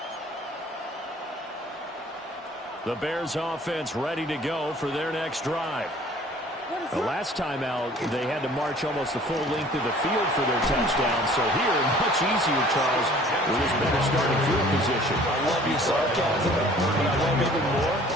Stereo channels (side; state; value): both; normal; correlation 0.51